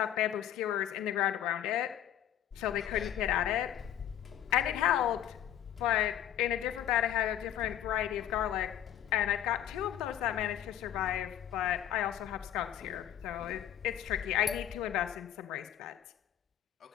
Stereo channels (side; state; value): right; quieter; 11.1 dB